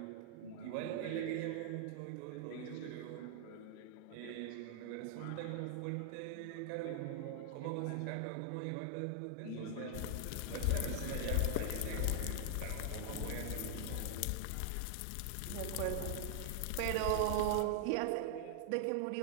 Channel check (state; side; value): different; both; correlation 0.00